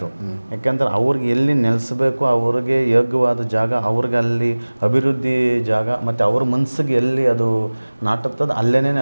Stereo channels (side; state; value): both; inverted; correlation -1.00